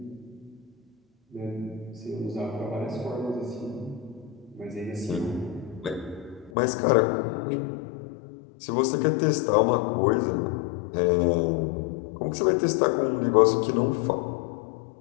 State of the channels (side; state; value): right; drops out; at 6.5 s